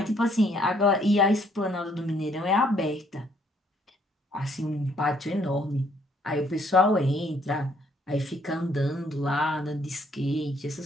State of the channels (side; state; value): both; normal; correlation 0.67